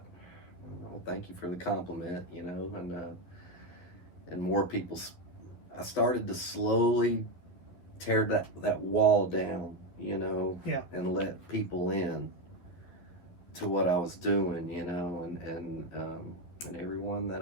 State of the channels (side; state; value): right; late; 11 ms